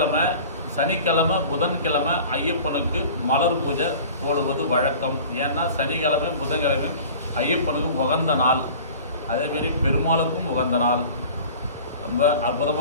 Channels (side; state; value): both; inverted; correlation -0.42